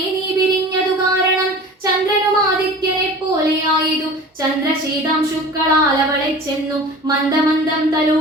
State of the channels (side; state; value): both; normal; correlation 0.39